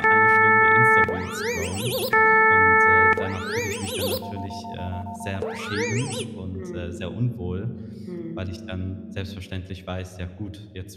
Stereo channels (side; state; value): both; identical; correlation 1.00